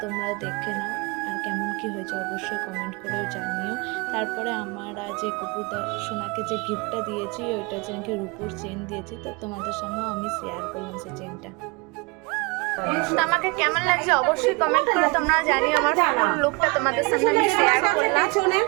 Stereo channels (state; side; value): quieter; left; 28.4 dB